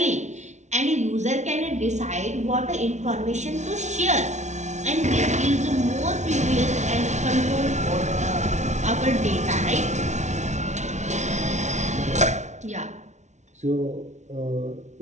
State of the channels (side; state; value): left; late; 0.33 ms